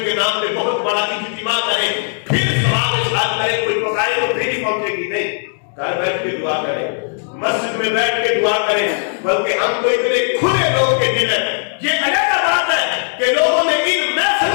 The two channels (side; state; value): right; silent; digital silence